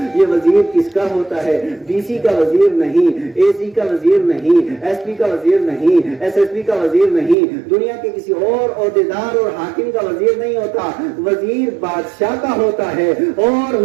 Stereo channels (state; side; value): drops out; left; at 7.4 s